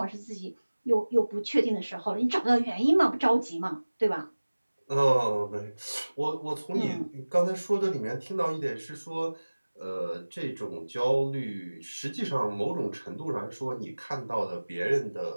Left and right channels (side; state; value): both; inverted; correlation -1.00